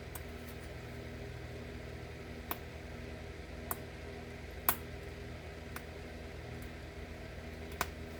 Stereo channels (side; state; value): both; identical; correlation 1.00